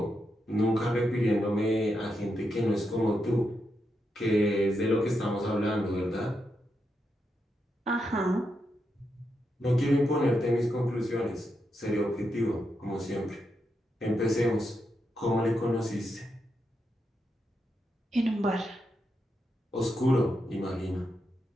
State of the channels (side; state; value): both; normal; correlation 0.84